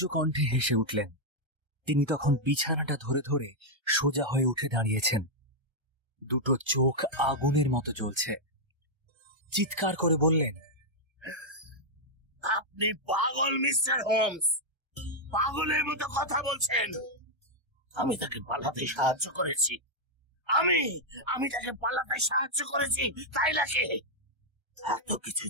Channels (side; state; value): left; late; 1.3 ms